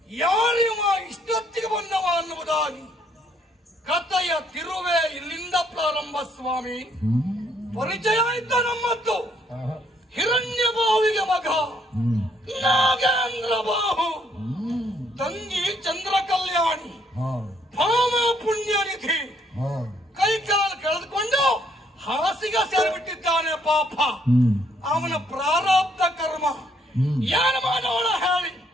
ಯಾರಿವ ಇಷ್ಟೊತ್ತಿಗೆ ಬಂದವ ಅನ್ನುವುದಾಗಿ ಕಥೆಯ ತಿರುವೆ ಇಲ್ಲಿಂದ ಪ್ರಾರಂಭ. ಸ್ವಾಮಿ ಪರಿಚಯ ಇದ್ದ ನಮ್ಮದ್ದು ಹಿರಣ್ಯ ಬಾಹುವಿಗೆ ಮಗ ನಾಗೇಂದ್ರ ಬಾಹು, ತಂಗಿ ಚಂದ್ರ ಕಲ್ಯಾಣಿ, ಭಾಮ ಪುಣ್ಯನಿಧಿ. ಕೈಕಾಲು ಕಳೆದುಕೊಂಡು ಹಾಸಿಗೆ ಸೇರಿಬಿಟ್ಟಿದ್ದಾನೆ ಪಾಪ. ಅವನ ಪ್ರಾರಬ್ಧ ಕರ್ಮ ಏನು ಮಾಡೋಣ ಹೇಳಿ.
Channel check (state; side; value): normal; both; correlation 0.68